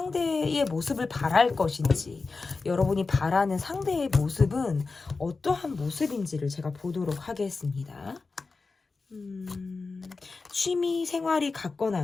모습을 바랄 것인지, 여러분이 바라는 상대의 모습은 어떠한 모습인지를 제가 보도록 하겠습니다. 취미 생활이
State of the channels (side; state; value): right; quieter; 4.1 dB